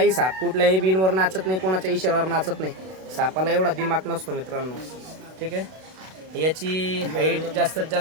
साप कुठल्याही बिनवर नाचत नाही, कोणाच्या इशाऱ्यावर नाचत नाही. सापाला एवढा दिमाग नसतो मित्रांनो. ठीक आहे. याची हाईट जास्तीत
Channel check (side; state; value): left; late; 32 ms